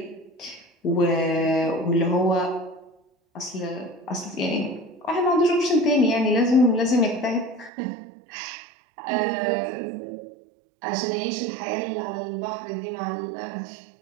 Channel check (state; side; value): drops out; left; at 7.7 s